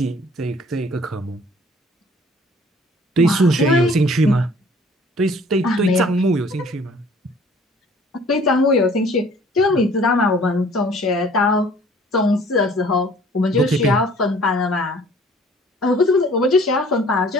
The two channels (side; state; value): both; normal; correlation 0.54